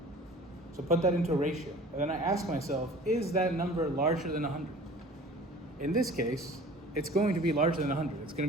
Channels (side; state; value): both; normal; correlation 0.45